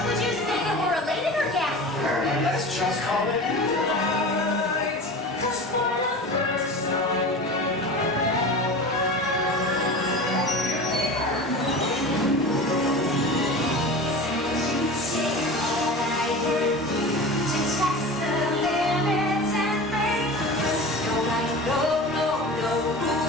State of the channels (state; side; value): normal; both; correlation 0.33